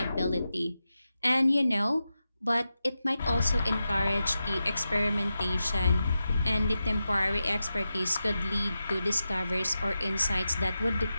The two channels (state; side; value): inverted; both; correlation -0.91